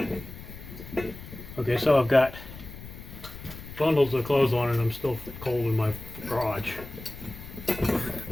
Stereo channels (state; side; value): noise; left; rumble, 14 dB below the sound